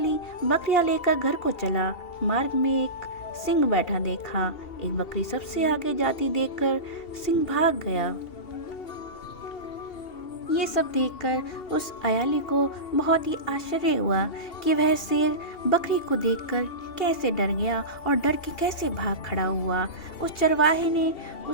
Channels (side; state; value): right; late; 2.7 ms